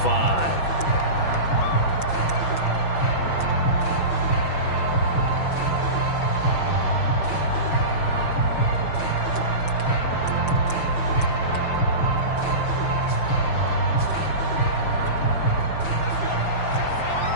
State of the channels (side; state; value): right; late; 6.0 ms